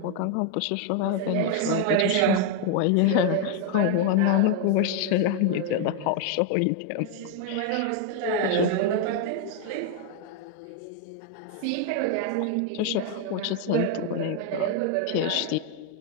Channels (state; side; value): different; both; correlation 0.01